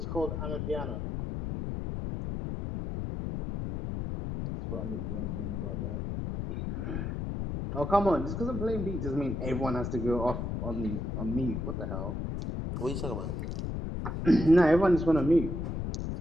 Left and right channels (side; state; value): left; noise; rumble, 3 dB below the sound